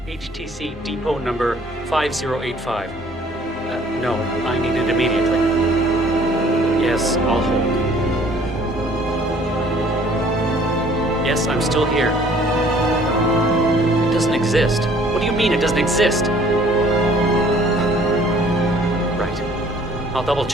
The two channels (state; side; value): normal; both; correlation 0.56